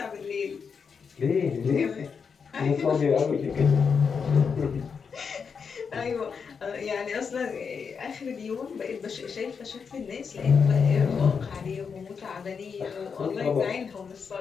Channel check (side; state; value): right; quieter; 6.0 dB